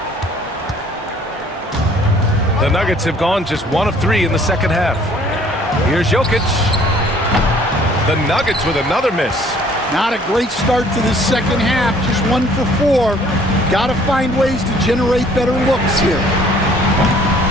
The Nuggets have gone just 1 of 3 in the second half. Here's Jokic. The Nuggets with another miss. Not a great start to this second half. Just 1 for 4. Got to find ways to generate better looks here.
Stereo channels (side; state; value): both; normal; correlation 0.57